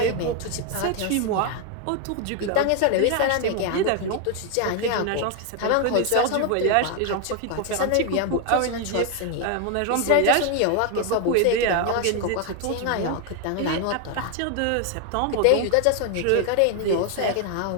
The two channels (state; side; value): different; both; correlation 0.01